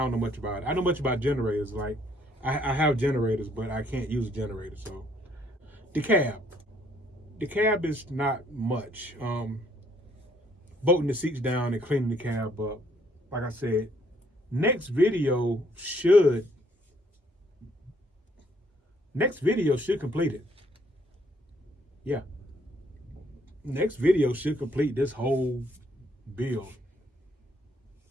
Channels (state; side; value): normal; both; correlation 0.66